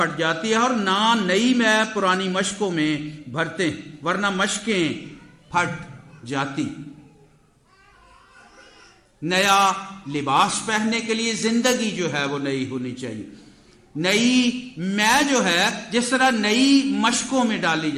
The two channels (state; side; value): identical; both; correlation 1.00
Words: جاتی ہے، اور نہ نئی میں پرانی مشکوں میں بھرتے ہیں ورنہ مشکیں پھٹ جاتی. نیا لباس پہننے کے لیے زندگی جو ہے وہ نئی ہونی چاہیے. نئی میں جو ہے جس طرح نئی مشکوں میں ڈالی